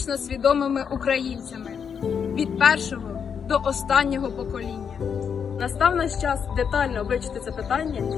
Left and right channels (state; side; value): quieter; right; 7.0 dB